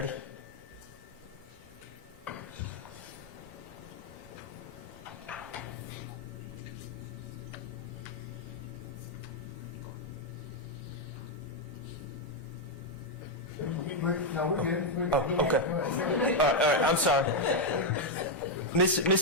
No, we're good. Oh, okay. All right, I'm sorry.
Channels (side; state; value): both; normal; correlation 0.01